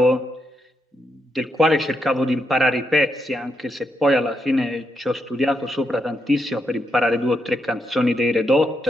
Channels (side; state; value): both; normal; correlation 0.81